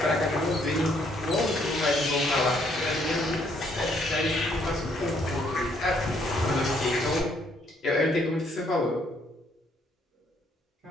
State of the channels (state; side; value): normal; both; correlation 0.68